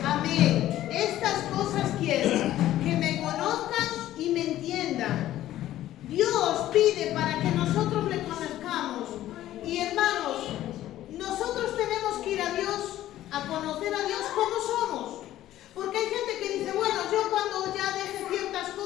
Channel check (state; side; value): quieter; right; 13.6 dB